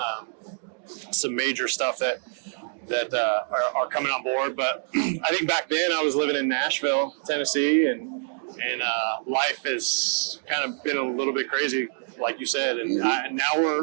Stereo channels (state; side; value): silent; left; 59 dB below the other